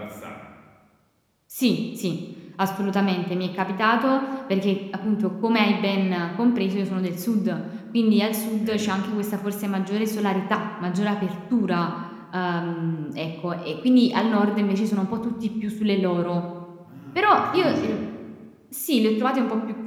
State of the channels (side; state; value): both; identical; correlation 1.00